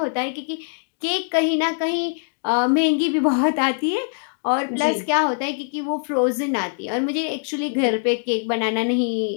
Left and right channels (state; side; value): silent; right; 60 dB below the other